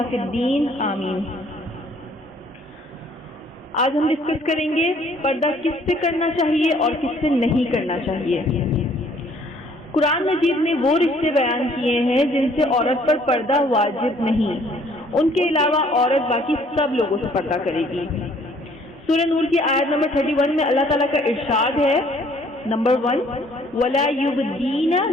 فی الدین، آمین۔ آج ہم ڈسکس کریں گے پردہ کس سے کرنا چاہیے اور کس سے نہیں کرنا چاہیے۔ قرآن مجید نے وہ رشتے بیان کیے ہیں جن سے عورت پر پردہ واجب نہیں، ان کے علاوہ عورت باقی سب لوگوں سے پردہ کرے گی۔ سورہ نور کی آیت نمبر 31 میں اللہ تعالیٰ کا ارشاد ہے، نمبر 1، وَلَا يُبْدِينَ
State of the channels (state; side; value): normal; both; correlation 0.60